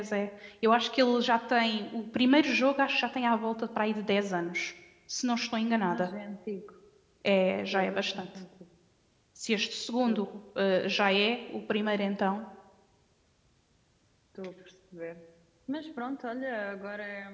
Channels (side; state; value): both; identical; correlation 1.00